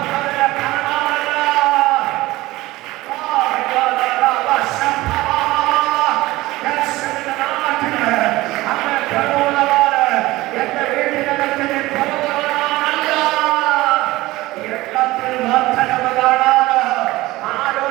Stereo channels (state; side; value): quieter; left; 18.7 dB